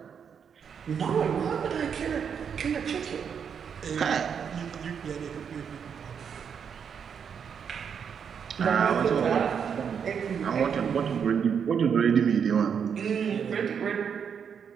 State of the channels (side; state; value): left; quieter; 7.2 dB